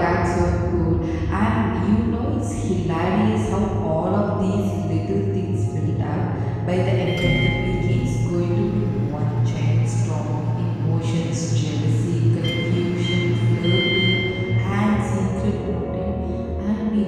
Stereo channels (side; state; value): both; identical; correlation 1.00